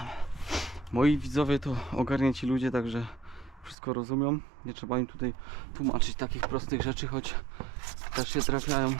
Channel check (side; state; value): left; drops out; at 3.8 s